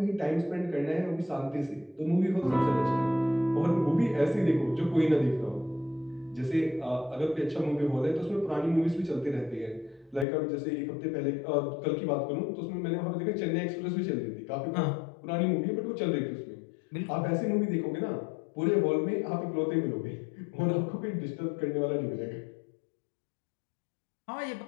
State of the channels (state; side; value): drops out; right; at 10.2 s